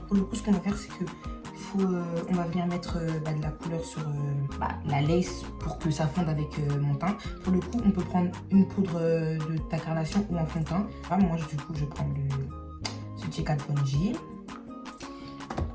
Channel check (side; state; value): both; identical; correlation 1.00